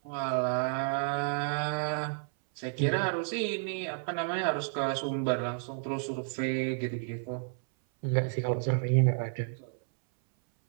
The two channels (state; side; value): silent; left; 57 dB below the other